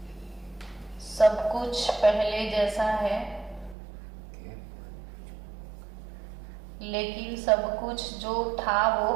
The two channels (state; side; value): drops out; left; at 3.8 s